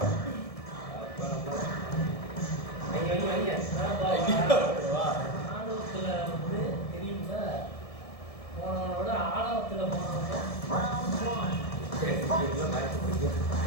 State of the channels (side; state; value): right; late; 1.7 ms